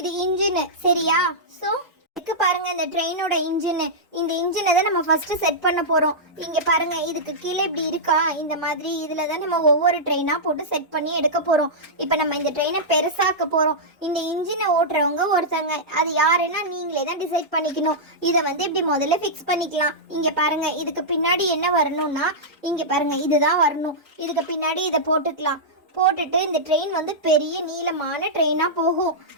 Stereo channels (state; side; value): normal; both; correlation -0.11